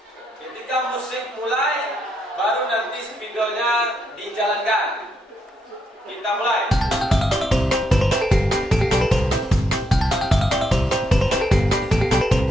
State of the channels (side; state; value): both; normal; correlation 0.79